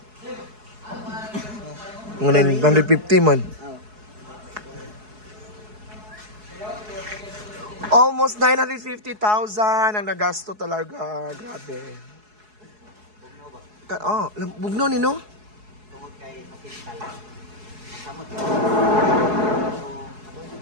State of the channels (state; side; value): late; left; 4.7 ms